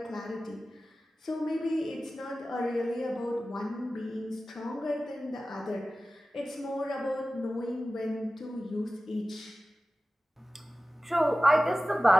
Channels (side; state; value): both; normal; correlation 0.95